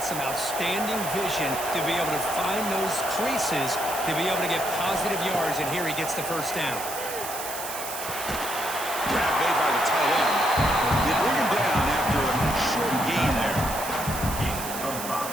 some outstanding vision to be able to find those creases, to be able to get positive yards, and here he gets the first down. Grab made by the tight end. They bring him down after a short gain there.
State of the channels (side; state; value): right; noise; hiss, 7 dB below the sound